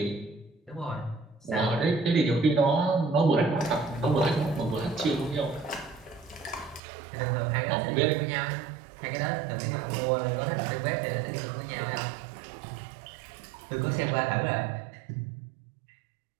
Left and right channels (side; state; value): left; drops out; at 6.8 s